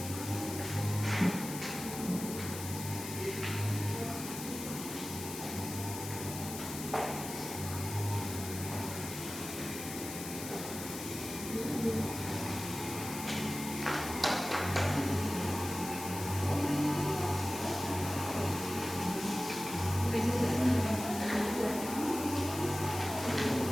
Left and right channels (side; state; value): left; noise; hiss, 8 dB below the sound